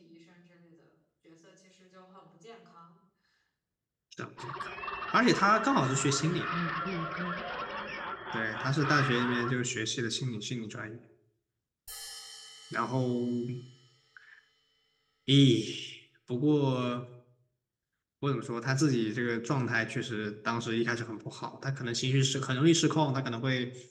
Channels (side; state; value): both; identical; correlation 1.00